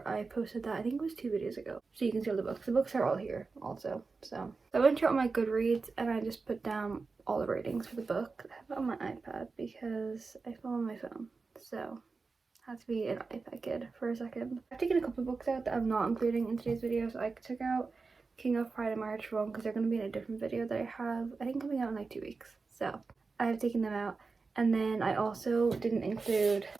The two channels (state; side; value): quieter; left; 4.3 dB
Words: I posted that, I think it was 2 videos ago, so you can see all the books. The books are all here also. So I went through all my Goodreads and I just put down all the ratings for the book. I have it on my iPad because I fell on my phone, so I have to be an iPad kid for a second. I've taken a couple of books out that I'm not including in today's video. So I took out King of Pride and March Rome because they're going to be in a different video that I have, I think, coming out in like 2 weeks. So I have taken them out. And then I also didn't include